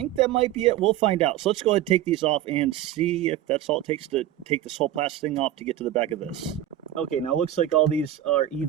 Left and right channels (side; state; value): left; quieter; 12.3 dB